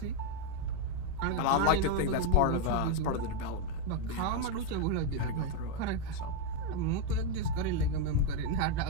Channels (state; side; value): different; both; correlation 0.01